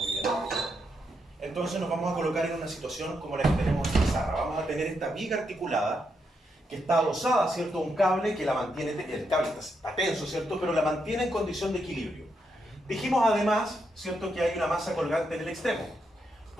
bien. Entonces nos vamos a colocar en una situación como la que tenemos en pizarra. Vamos a tener esta viga articulada que está adosada, ¿cierto?, a un cable que la mantiene, el cable está tenso, ¿cierto?, pero la mantiene en condición de equilibrio. Dijimos además, ¿cierto?, que hay una masa colgante en el extremo.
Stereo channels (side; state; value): both; normal; correlation 0.81